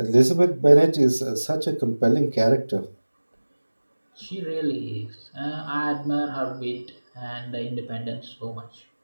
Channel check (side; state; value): both; inverted; correlation -1.00